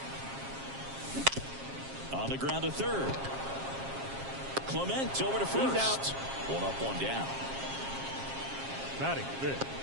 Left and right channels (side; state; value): left; late; 7.4 ms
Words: On the ground to third. Clement over to first. 1 up, 1 down. Batting 5th,